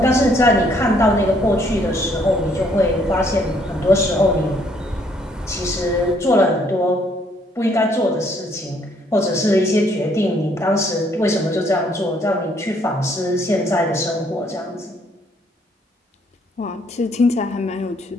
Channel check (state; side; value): normal; both; correlation 0.66